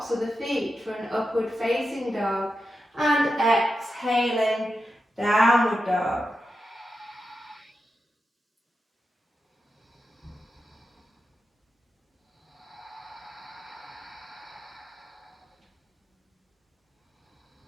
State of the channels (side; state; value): both; normal; correlation 0.89